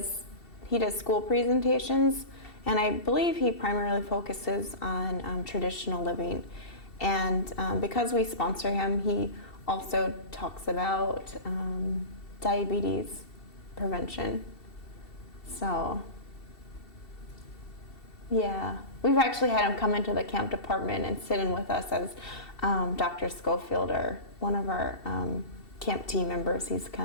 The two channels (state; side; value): late; right; 2.7 ms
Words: school presentations, and I believe he primarily focuses on traditional living. And because we sponsor him, he also talks about diabetes prevention. So, yeah, we've actually had him come into the camp department and sit in with us as Dr. Schofield, or one of our camp team members. He's